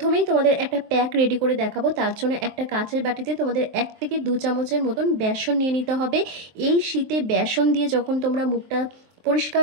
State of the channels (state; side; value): late; left; 23 ms